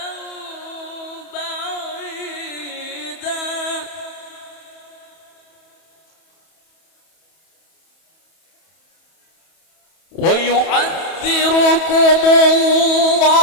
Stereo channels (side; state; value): right; late; 31 ms